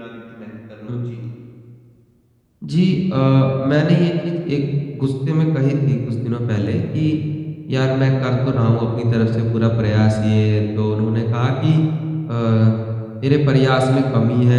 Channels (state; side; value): identical; both; correlation 1.00